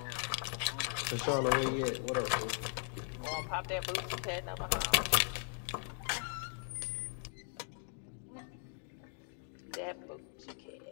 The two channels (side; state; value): right; silent; 52 dB below the other